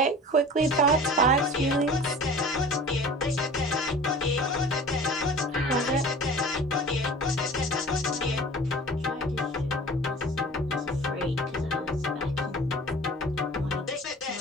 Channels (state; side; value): normal; both; correlation 0.41